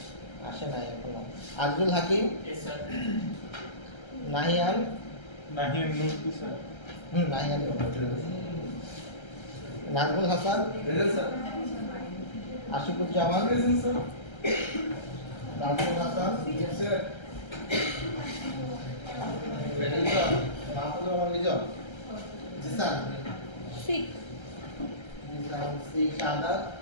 আসে নাই এখনো। আজরুল হাকিম। Yes, sir. নাহিয়ান। নাহিয়ান নূর কি sir? Nahiyan. Nazmul Hasan. Present, sir. Ashikuzzaman. Present, sir. Nazmul Hasan. Yes, sir. Lizon. Mahfuzur Rahman Lizon. Jisan. Six. Jisan C. Shahadat.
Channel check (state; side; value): late; right; 1.3 ms